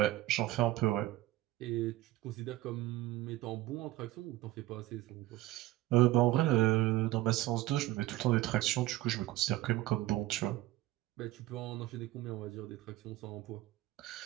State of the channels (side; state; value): left; quieter; 16.6 dB